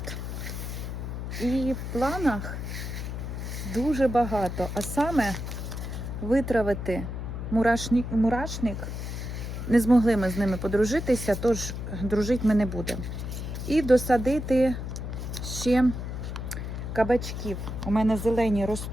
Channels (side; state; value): left; noise; hum, 6 dB below the sound